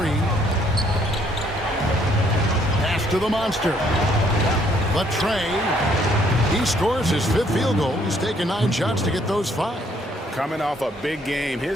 Pass to the monster. But Trey, he scores his 5th field goal. He's taken 9 shots to get those 5. Coming off a big game,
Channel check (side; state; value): both; normal; correlation 0.66